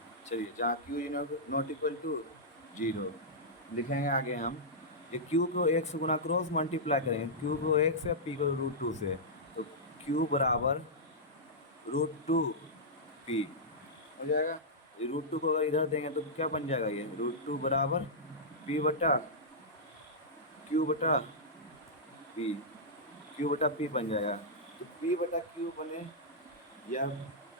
चलिए जहाँ Q is not equal to 0 लिखेंगे आगे हम ये क्यू को 1 से गुना क्रॉस मल्टीप्लाई करेंगे क्यू को 1 से पी को √2 से तो क्यू बराबर √2 पी हो जाएगा। √2 को अगर इधर देंगे तो क्या बन जाएगा ये √2 बराबर पी बटा क्यू बटा पी क्यू बटा पी बन जाएगा। तो पी बटा क्यू बने या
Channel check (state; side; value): normal; both; correlation -0.11